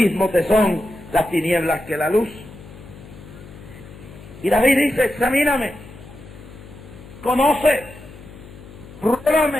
te son las tinieblas que la luz. Y David dice, examíname, conoce,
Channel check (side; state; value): left; noise; hum, 18 dB below the sound